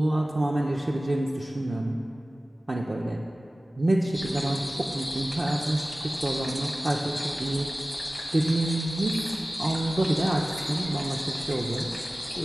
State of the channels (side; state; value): both; normal; correlation 0.97